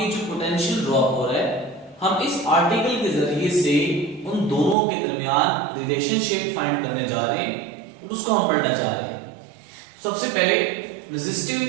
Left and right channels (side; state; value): left; drops out; at 4.8 s